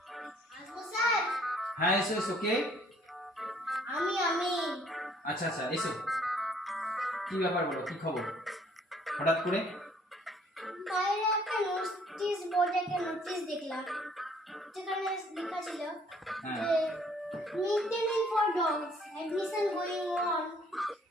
আসবো স্যার? হ্যাঁ এসো এসো। কে? আমি আচ্ছা আচ্ছা এসো। কি ব্যাপার বলো, কি খবর হঠাৎ করে? বাইরে একটা নোটিশ বোর্ডে একটা নোটিশ দেখলাম, যেখানে লেখা ছিল হ্যাঁ। যে mid day meal for dogs admission going on.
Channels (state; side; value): normal; both; correlation 0.60